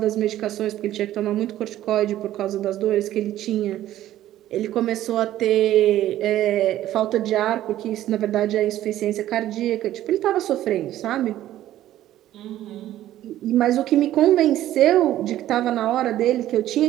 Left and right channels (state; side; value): quieter; left; 13.3 dB